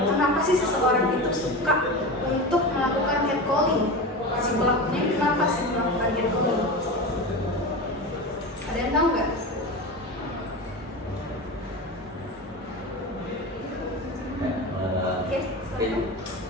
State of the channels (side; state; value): both; normal; correlation 0.25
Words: kenapa sih seseorang itu suka untuk melakukan catcalling? Si pelakunya kenapa sih melakukan catcalling? Ada Ada yang tahu nggak? Oke, Mungkin